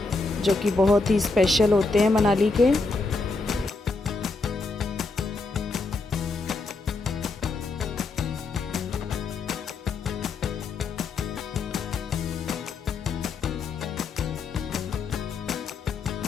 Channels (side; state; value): right; quieter; 3.8 dB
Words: जो कि बहुत ही स्पेशल होते हैं मनाली के।